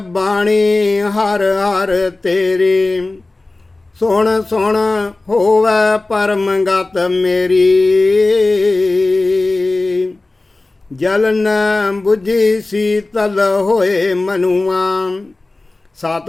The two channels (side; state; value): right; quieter; 3.1 dB